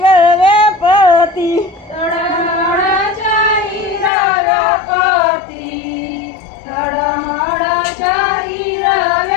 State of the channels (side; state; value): right; drops out; at 4.1 s